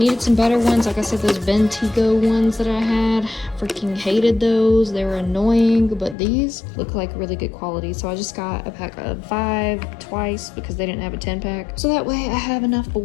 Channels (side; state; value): right; drops out; at 6.2 s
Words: some better ones. Like I said, those Bentigo ones that I had, freaking hated those. They were annoying, but these look like really good quality. So I just got a pack of 5 twice because they didn't have a 10-pack. So that way I have enough